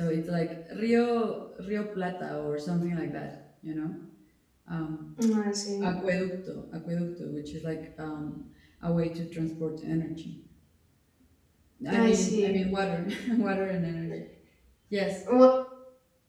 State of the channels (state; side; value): identical; both; correlation 1.00